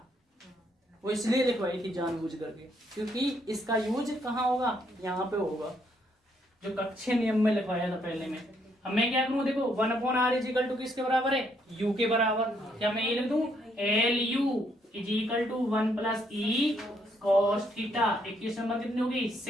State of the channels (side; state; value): both; normal; correlation 0.72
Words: वो इसलिए लिखवाई थी जानबूझ करके, क्योंकि इसका यूज कहाँ होगा, यहाँ पे होगा, जो कक्षीय नियम में लिखवाया था पहले में। अब मैं क्या करूं, देखो 1 upon R is equal to किसके बराबर है, U के बराबर। क्या मैं ये लिख दूं, LU is equal to 1 plus E cos theta. Equation number कितनी होगी,